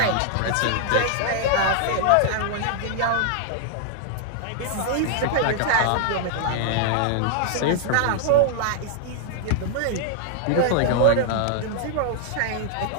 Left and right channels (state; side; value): different; both; correlation -0.01